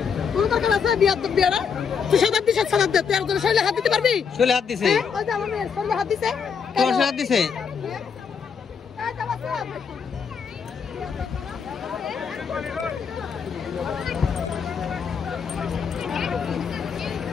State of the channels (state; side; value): quieter; right; 6.4 dB